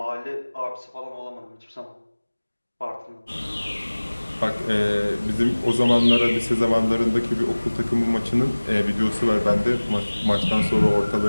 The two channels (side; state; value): both; inverted; correlation -1.00